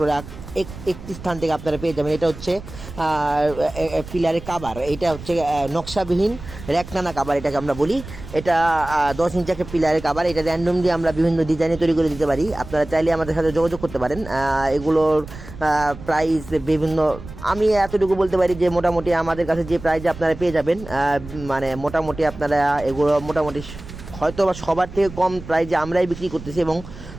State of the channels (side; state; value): right; noise; rumble, 14 dB below the sound